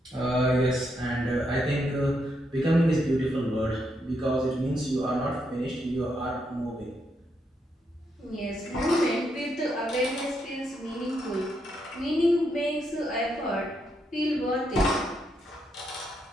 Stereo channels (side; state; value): both; normal; correlation 0.79